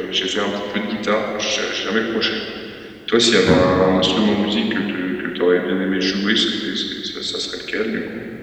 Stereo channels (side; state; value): both; identical; correlation 1.00